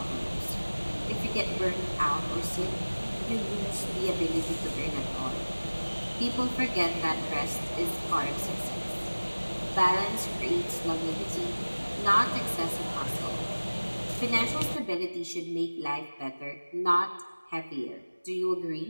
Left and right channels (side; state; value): both; inverted; correlation -1.00